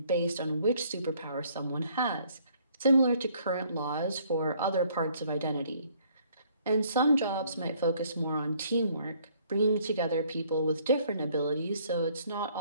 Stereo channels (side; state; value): both; inverted; correlation -0.63